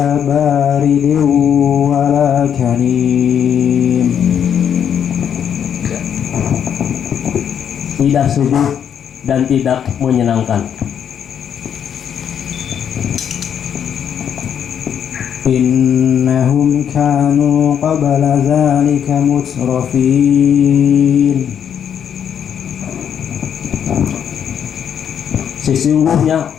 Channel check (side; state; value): right; quieter; 8.5 dB